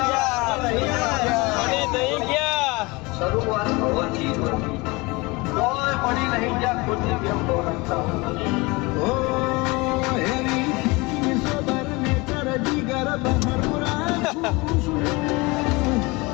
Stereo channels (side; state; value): right; quieter; 24.7 dB